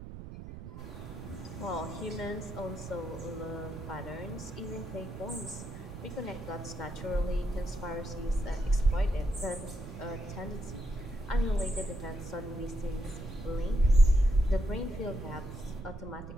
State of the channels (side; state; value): right; noise; rumble, 11 dB below the sound